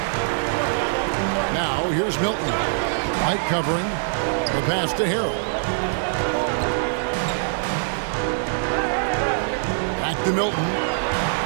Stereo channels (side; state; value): left; silent; digital silence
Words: Now here's Milton. White covering. The pass to Harrell. Back to Milton.